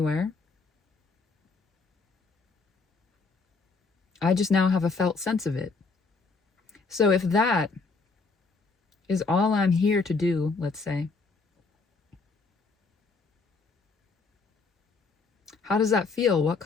I just now have a felt sense of it. So if that is all I'm here to do, let's say, how does that feel? What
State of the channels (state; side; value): quieter; right; 4.2 dB